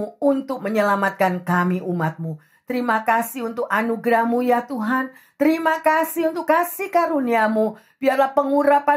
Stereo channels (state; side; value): identical; both; correlation 1.00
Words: untuk menyelamatkan kami umat-Mu. Terima kasih untuk anugerah-Mu ya Tuhan. Terima kasih untuk kasih karunia-Mu. Biarlah